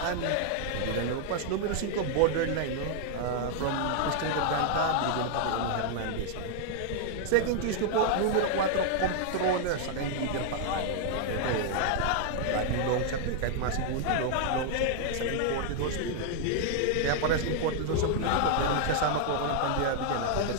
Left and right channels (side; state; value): both; different; correlation 0.00